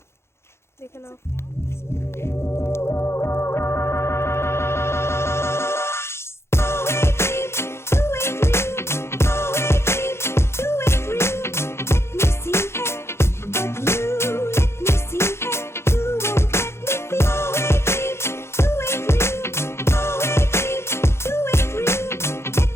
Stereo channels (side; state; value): right; late; 0.12 ms